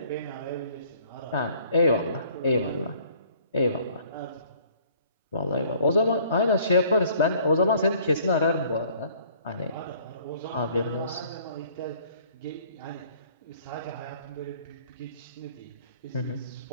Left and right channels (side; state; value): both; inverted; correlation -0.57